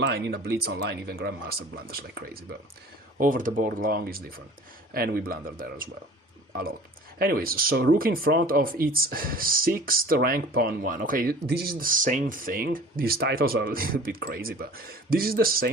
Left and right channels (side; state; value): both; normal; correlation 0.45